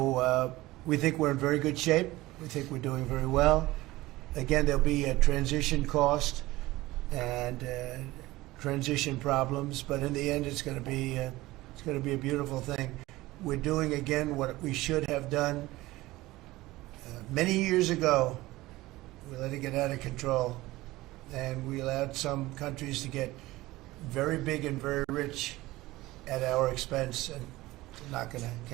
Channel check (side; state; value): left; quieter; 18.6 dB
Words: we think we're in very good shape. We think we're doing very well. Again, there'll be a transition cost and transition problems, but in the end, it's going to be a beautiful thing. We're doing again what we should have done many years ago. We let it get out of control, and we allowed some countries to get very big and very rich at our expense, and